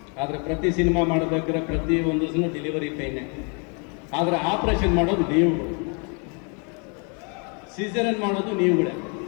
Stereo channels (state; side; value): quieter; right; 36.2 dB